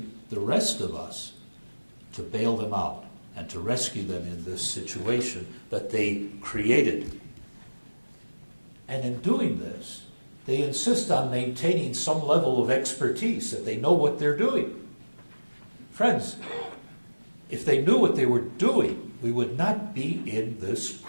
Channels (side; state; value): both; inverted; correlation -1.00